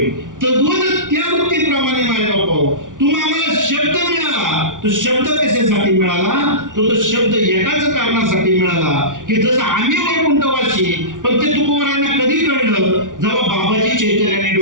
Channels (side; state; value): left; late; 0.88 ms